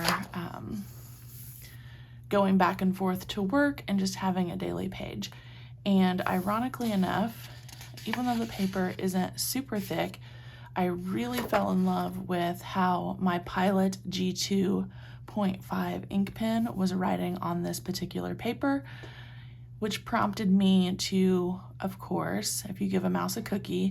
going back and forth to work and just having a daily page. And ironically enough, even though the paper isn't super thick, I really fell in love with how my Pilot G2.5 ink pen was writing on this particular paper, which prompted me to, of course, if you give a mouse a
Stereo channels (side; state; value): both; identical; correlation 1.00